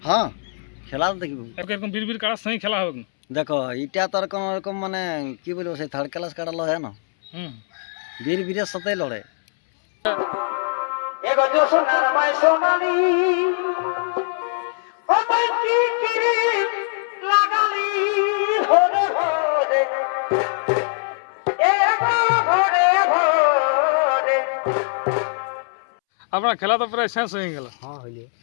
হ্যাঁ, খেলা তো দেখবো। এরকম বীর কাড়ার সঙ্গে খেলা হবে না। দেখো এটা তো আর কোনো রকম মানে কি বলবো, সেই থার্ড ক্লাস কাড়া লড়ে না, হুম বীরের সাথেই লড়ে। আপনার খেলা তো প্রায় শেষ হয়ে গেল। হ্যাঁ হইলে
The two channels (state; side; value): silent; right; 64 dB below the other